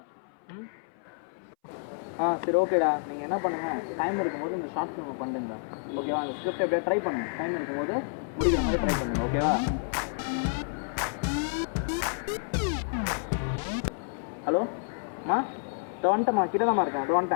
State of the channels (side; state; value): right; silent; 58 dB below the other